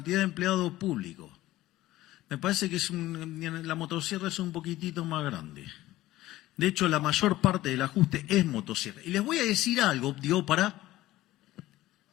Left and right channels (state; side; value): quieter; right; 16.1 dB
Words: de empleados públicos. Me parece que la motosierra es un poquitito más grande. De hecho, la mayor parte del ajuste es motosierra. Y les voy a decir algo,